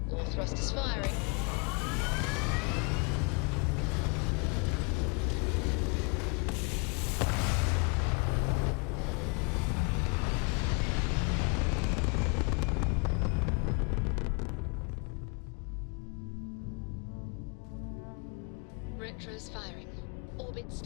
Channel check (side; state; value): right; quieter; 33.3 dB